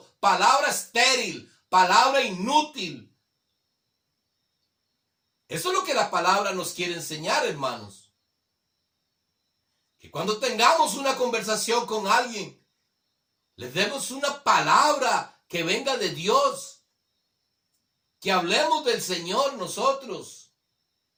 palabra estéril, palabra inútil. Eso es lo que la palabra nos quiere enseñar, hermanos. Que cuando tengamos una conversación con alguien, les demos una palabra que venga de Dios. que hablemos del Señor nosotros.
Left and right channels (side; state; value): both; identical; correlation 1.00